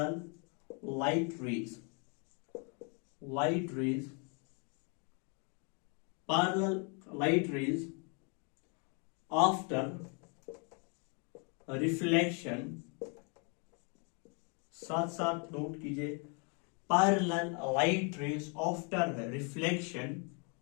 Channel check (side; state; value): right; quieter; 36.6 dB